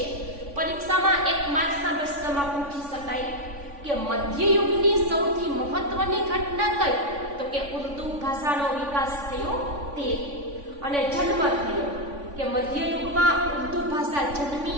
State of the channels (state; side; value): late; left; 3.5 ms